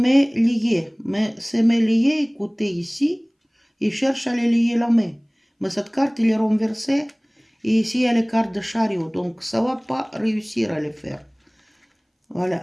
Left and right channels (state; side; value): identical; both; correlation 1.00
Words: liées. Mais ces mains liées, écoutez ici, il cherche à les lier la main. Mais cette carte, il est renversée. Et ici, il y a les cartes de chariot. Donc, ça ne va pas réussir à les faire.